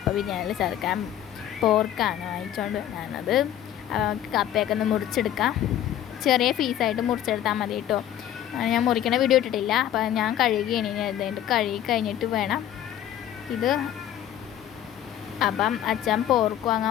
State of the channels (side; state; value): right; quieter; 11.3 dB